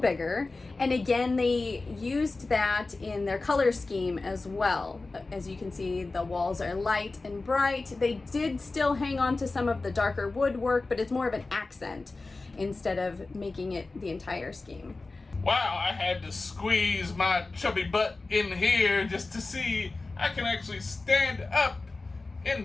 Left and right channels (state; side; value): quieter; right; 3.5 dB